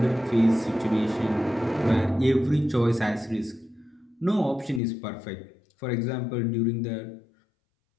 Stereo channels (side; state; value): right; drops out; at 4.8 s